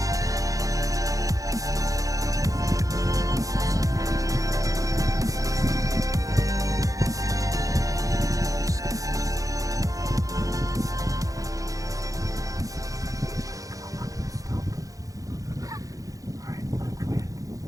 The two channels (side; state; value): left; late; 0.17 ms